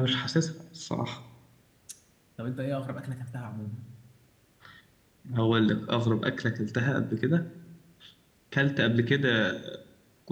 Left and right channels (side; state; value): both; identical; correlation 1.00